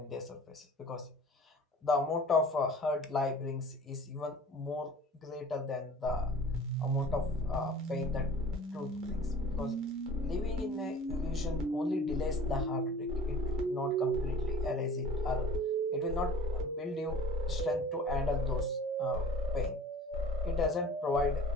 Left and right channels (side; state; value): both; normal; correlation 0.45